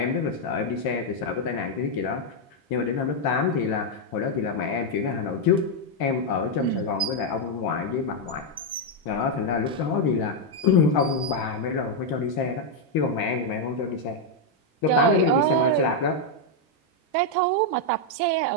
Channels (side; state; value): both; normal; correlation 0.00